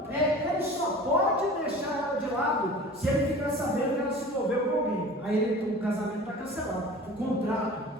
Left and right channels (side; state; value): both; normal; correlation 0.40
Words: ele só pode deixar ela de lado se ele ficar sabendo que ela se envolveu com alguém. Aí o casamento está cancelado, o